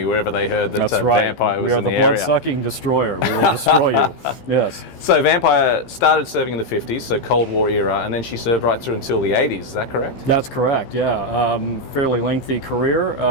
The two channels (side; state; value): right; late; 15 ms